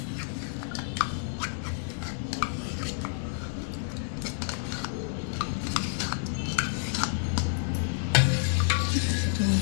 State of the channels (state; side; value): silent; right; digital silence